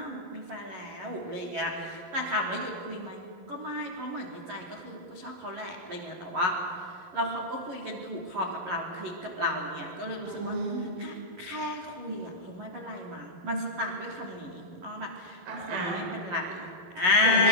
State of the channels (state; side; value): late; left; 11 ms